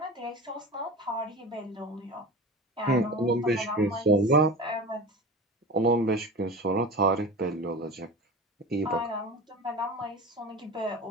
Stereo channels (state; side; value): normal; both; correlation 0.32